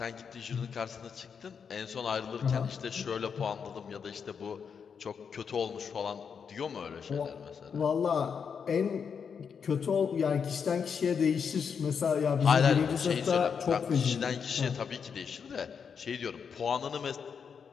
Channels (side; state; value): right; quieter; 6.6 dB